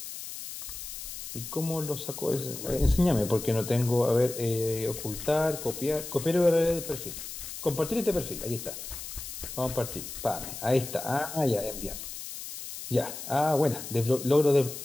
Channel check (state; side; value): noise; left; hiss, 9 dB below the sound